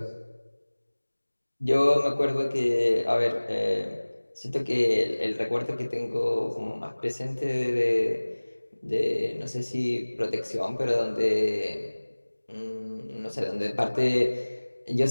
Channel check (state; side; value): inverted; both; correlation -1.00